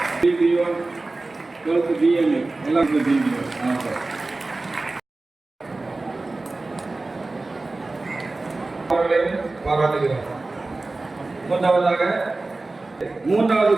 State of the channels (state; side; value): quieter; left; 3.2 dB